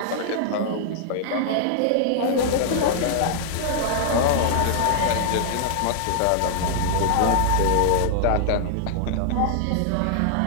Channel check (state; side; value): different; both; correlation -0.01